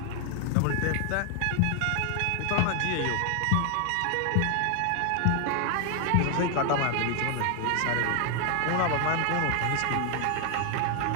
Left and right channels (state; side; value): different; both; correlation 0.00